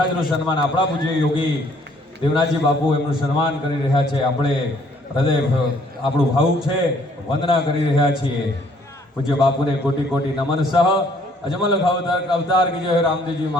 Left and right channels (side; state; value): both; normal; correlation 0.63